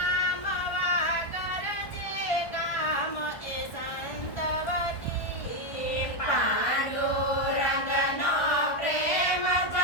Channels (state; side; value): late; right; 1.4 ms